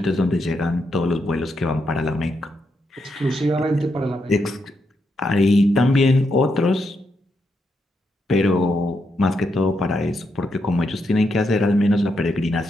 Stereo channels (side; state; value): both; normal; correlation 0.81